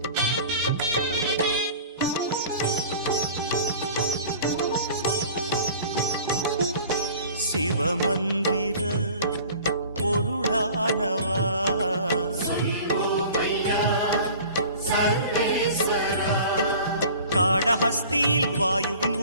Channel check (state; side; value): inverted; both; correlation -0.44